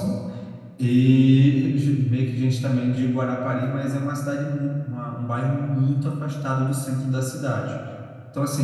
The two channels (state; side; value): identical; both; correlation 1.00